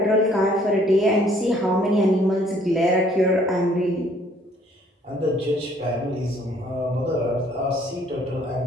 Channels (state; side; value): normal; both; correlation 0.61